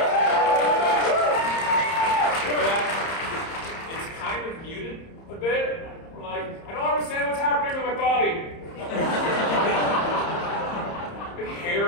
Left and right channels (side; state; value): right; late; 30 ms